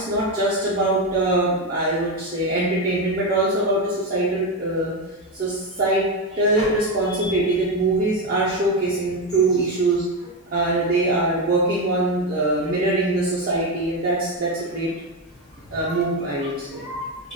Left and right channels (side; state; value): both; normal; correlation 0.12